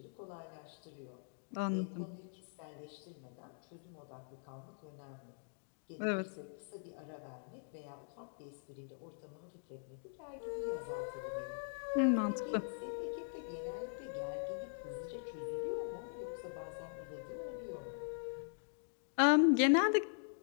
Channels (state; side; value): silent; right; digital silence